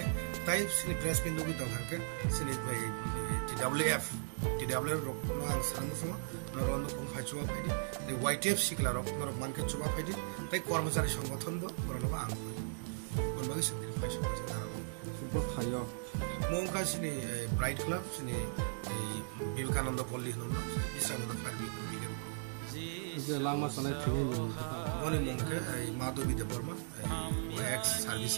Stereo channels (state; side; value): silent; left; digital silence